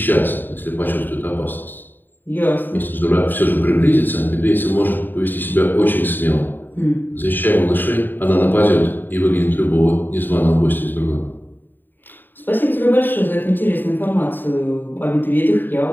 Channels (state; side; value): late; right; 0.092 ms